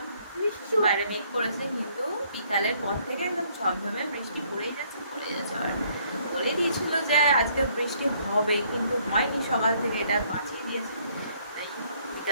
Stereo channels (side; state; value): both; inverted; correlation -0.65